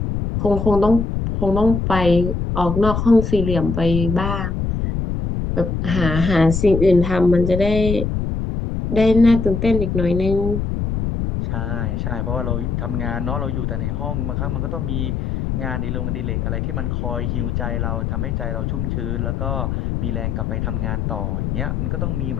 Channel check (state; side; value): noise; left; rumble, 1 dB below the sound